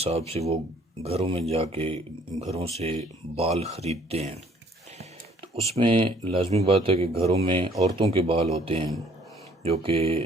سے وہ گھروں میں جا کے گھروں سے بال خریدتے ہیں۔ تو اس میں لازمی بات ہے کہ گھروں میں عورتوں کے بال ہوتے ہیں جو کہ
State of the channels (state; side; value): normal; both; correlation 0.60